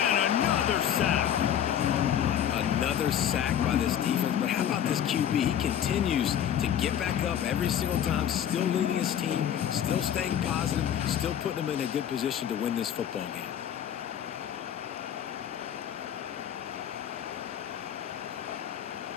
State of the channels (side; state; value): right; quieter; 9.8 dB